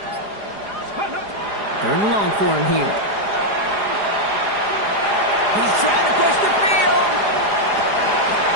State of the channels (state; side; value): late; left; 4.9 ms